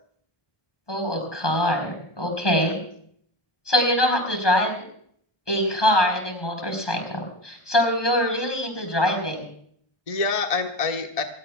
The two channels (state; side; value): late; right; 1.2 ms